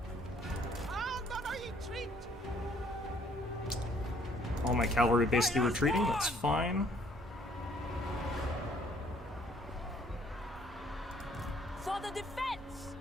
All my cavalry basically retreating, that's fine. For the defense.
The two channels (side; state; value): both; normal; correlation 0.62